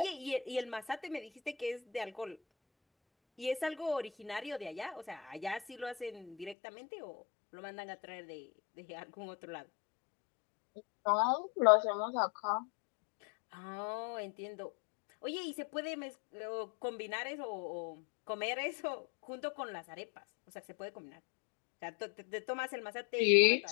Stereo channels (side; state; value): right; drops out; at 6.6 s